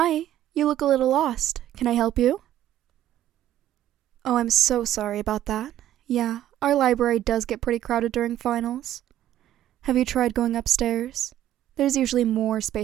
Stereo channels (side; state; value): left; quieter; 12.4 dB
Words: you look a little lost. Can I help you? Oh, I'm so sorry about that. Yeah, our library does get pretty crowded during finals. Have you tried going upstairs? There's usually more